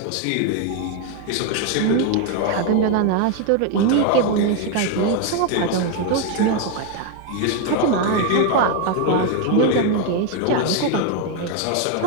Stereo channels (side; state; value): both; different; correlation 0.01